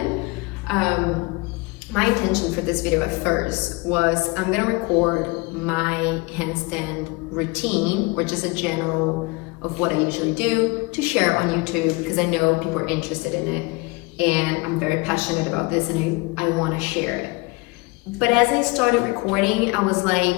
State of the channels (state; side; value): quieter; right; 25.7 dB